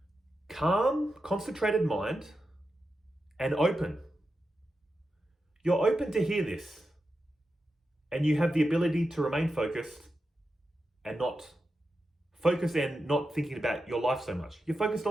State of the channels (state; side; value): normal; both; correlation 0.89